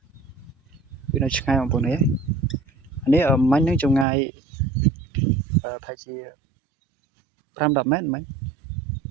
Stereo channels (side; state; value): left; drops out; at 4.0 s